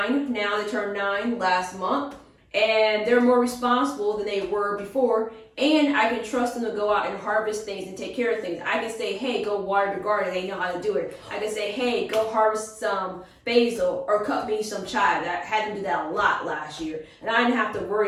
now, they turned 9 last month. And they're more responsible than they were before. And I can trust them to go out and harvest things and take care of things. I can say, hey, go water the garden. They know how to do it. I can say, hey, go harvest some basil or cut me some chive. I had them do that a lot last year. And I didn't have to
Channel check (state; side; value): identical; both; correlation 1.00